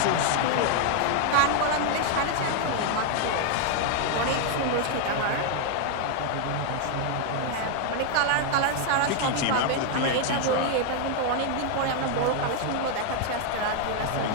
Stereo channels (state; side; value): different; both; correlation 0.00